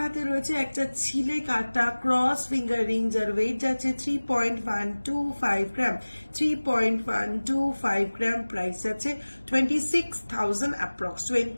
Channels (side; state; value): both; inverted; correlation -1.00